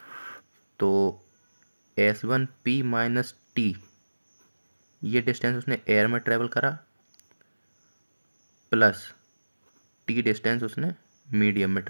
तो S1P माइनस T, ये डिस्टेंस उसने एयर में ट्रेवल करा, प्लस T डिस्टेंस उसने मीडियम में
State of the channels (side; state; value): both; inverted; correlation -1.00